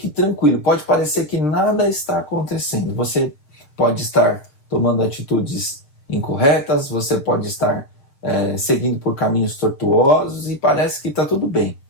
tranquilo, pode parecer que nada está acontecendo. Você pode estar tomando atitudes incorretas, você pode estar seguindo por caminhos tortuosos e parece que está tudo bem.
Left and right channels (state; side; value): late; right; 6.7 ms